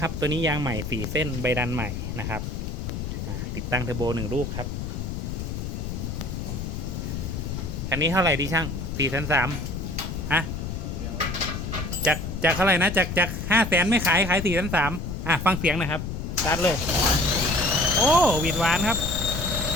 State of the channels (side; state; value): left; noise; rumble, 5 dB below the sound